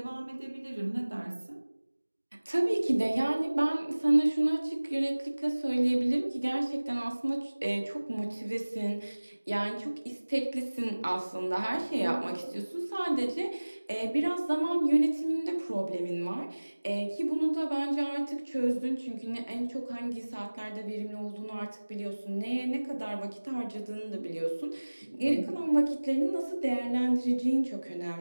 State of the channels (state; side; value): inverted; both; correlation -1.00